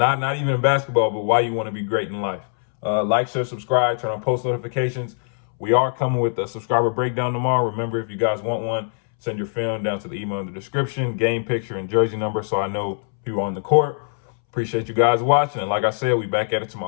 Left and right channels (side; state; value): right; silent; 64 dB below the other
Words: even in basketball, but why you want to be great in life. Like, share, subscribe, turn on post notifications. We are coming with a subscriber breakdown tomorrow. Remember, if you guys want one, send your film down to the email in the description, game picture and jersey number, so I know who are on the court. Appreciate you guys watching. And like I said, we back at it